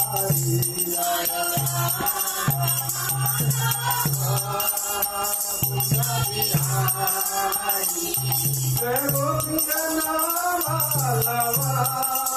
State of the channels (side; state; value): both; identical; correlation 1.00